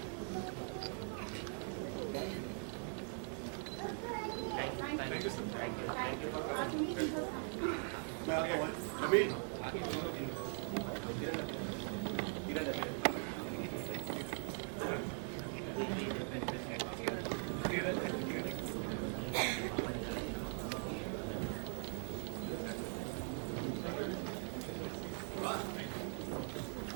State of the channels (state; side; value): silent; left; 50 dB below the other